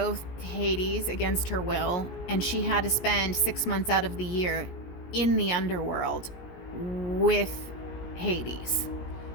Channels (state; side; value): late; right; 17 ms